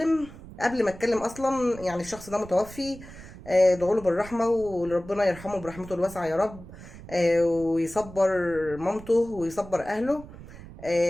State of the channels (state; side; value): noise; right; rumble, 16 dB below the sound